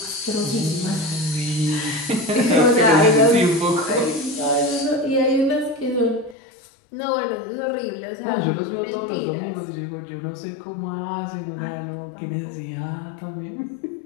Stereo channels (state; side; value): drops out; right; at 6.4 s